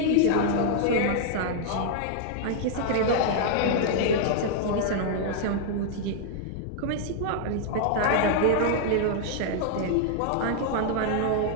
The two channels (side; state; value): both; different; correlation -0.01